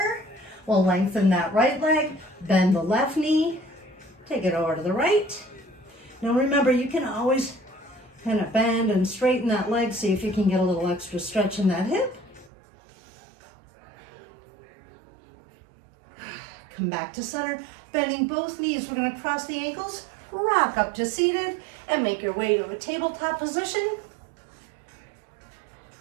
we'll lengthen that right leg, bend the left knee, take it over to the right. Now remember, you can always kind of bend and straighten that leg, see if you can get a little extra stretch in that hip. Come back to center, bending both knees. We're going to cross the ankles, rock up to seated, and make your way to a tabletop position.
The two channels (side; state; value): left; drops out; at 12.5 s